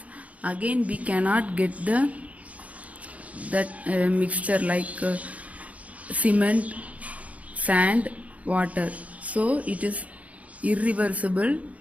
again we cannot get that mixture like cement, sand, water. So it is irreversible.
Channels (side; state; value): left; late; 0.068 ms